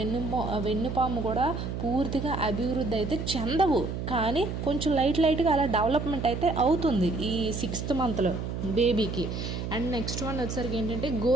వెన్నుపాము కూడా పూర్తిగా అభివృద్ధి అయితే చెందవు, కానీ కొంచెం లైట్గా అలా డెవలప్మెంట్ అయితే అవుతుంది ఈ 6th మంత్లో బేబీకి. అండ్ నెక్స్ట్ వన్ వచ్చేసరికి ఏంటంటే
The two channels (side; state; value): right; noise; hum, 4 dB below the sound